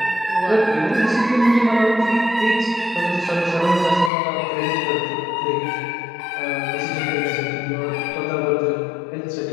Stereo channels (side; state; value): right; drops out; at 4.1 s